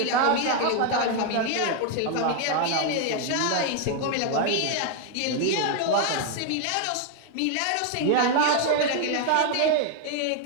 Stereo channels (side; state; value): both; different; correlation 0.00